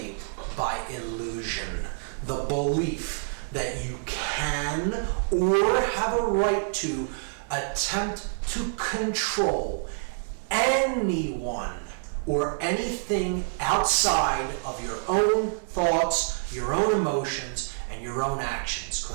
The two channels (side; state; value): left; silent; digital silence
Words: by illusion. The belief that you can or have a right to attempt to control anyone or anything outside of your own thoughts, your own emotions, and your own actions,